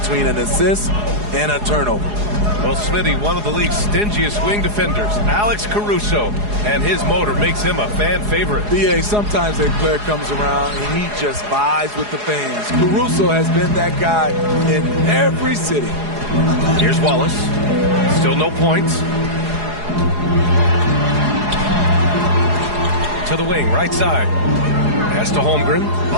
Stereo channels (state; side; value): late; left; 4.8 ms